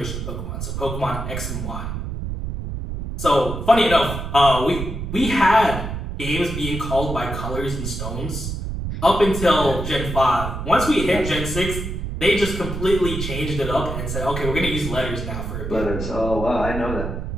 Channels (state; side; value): noise; right; rumble, 5 dB below the sound